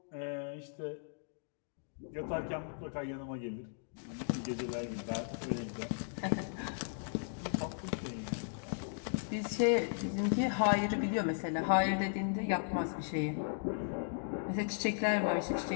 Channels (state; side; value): silent; right; digital silence